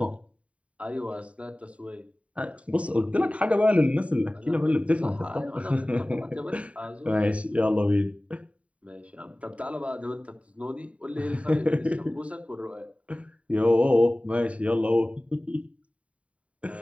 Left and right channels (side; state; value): left; late; 0.065 ms